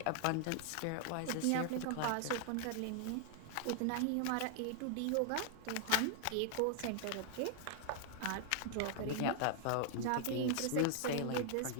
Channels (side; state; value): both; different; correlation 0.00